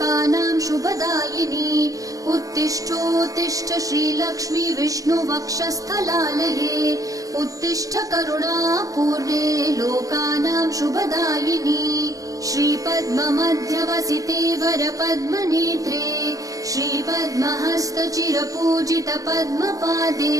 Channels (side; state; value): left; late; 0.17 ms